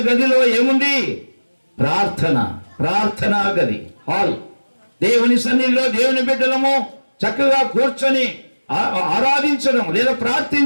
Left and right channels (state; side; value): inverted; both; correlation -1.00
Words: గదిలో ఏముంది? ప్రార్థన, ప్రార్థనా గది, హాల్. దేవుని సన్నిధిలో దేవుని బిడ్డలము చక్కగా కూర్చొని ఆరాధించడం, లేదా